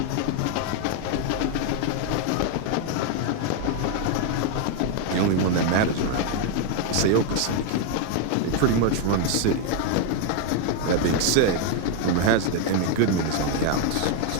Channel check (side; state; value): both; different; correlation 0.00